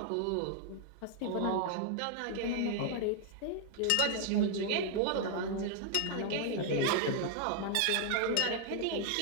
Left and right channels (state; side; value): different; both; correlation 0.00